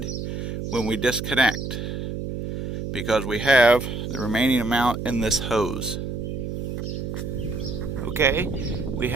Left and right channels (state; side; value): noise; right; hum, 5 dB below the sound